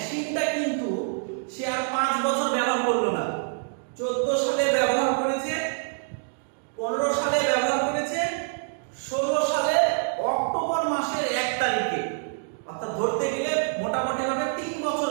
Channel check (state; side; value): silent; left; digital silence